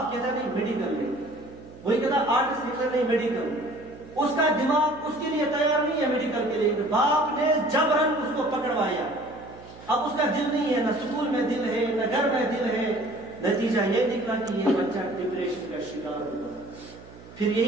کہتا ہے نہیں میڈیکل لے، وہی کہتا ہے آرٹس لکھنا نہیں میڈیکل، اس کا دماغ اس کے لیے تیار نہیں ہے میڈیکل کے لیے، باپ نے جبرن اس کو پکڑوایا، اب اس کا دل نہیں ہے، نہ اسکول میں دل ہے نہ گھر میں دل ہے، نتیجہ یہ نکلا کہ یہ بچہ ڈپریشن کا شکار ہوا۔ پھر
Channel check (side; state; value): right; noise; hum, 19 dB below the sound